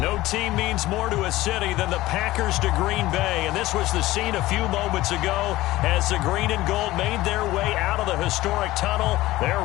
No team means more to a city than the Packers to Green Bay, and this was the scene a few moments ago as the green and gold made their way out of the historic tunnel.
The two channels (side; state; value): right; quieter; 17.3 dB